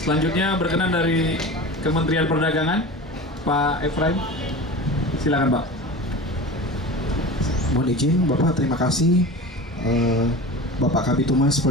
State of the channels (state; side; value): normal; both; correlation 0.33